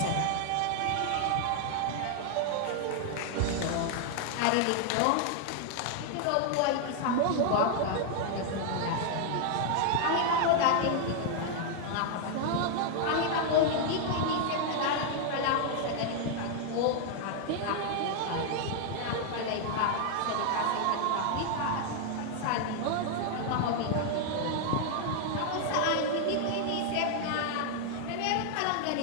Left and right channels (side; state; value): both; different; correlation 0.00